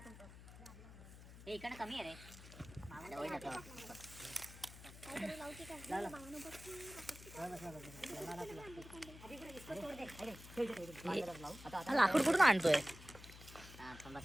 इकडे कमी आहे रे. लाकूड कुठून आणतोय?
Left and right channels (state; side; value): noise; left; hum, 16 dB below the sound